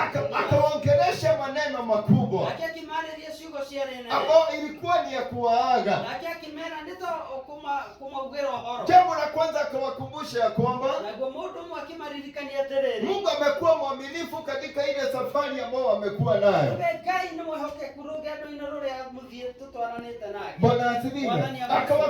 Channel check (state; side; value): identical; both; correlation 1.00